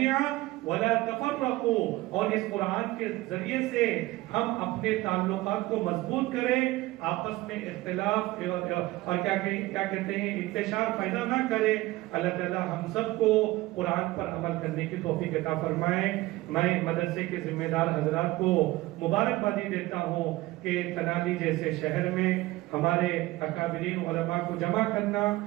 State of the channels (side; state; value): left; quieter; 18.8 dB